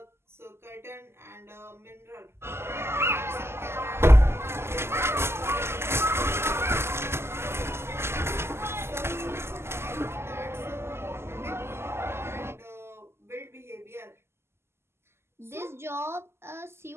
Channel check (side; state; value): left; late; 0.12 ms